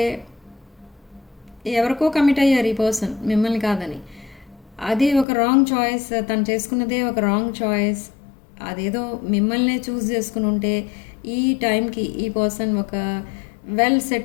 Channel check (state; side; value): drops out; right; at 5.2 s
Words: ఎవరికో కమిట్ అయ్యారు ఈ పర్సన్ మిమ్మల్ని కాదని. అది ఒక రాంగ్ చాయిస్, తను చేసుకున్నదే ఒక రాంగ్ చాయిస్. అదేదో మిమ్మల్నే చూస్ చేసుకుని ఉంటే ఈ టైంకి ఈ పర్సన్ ఒక వెల్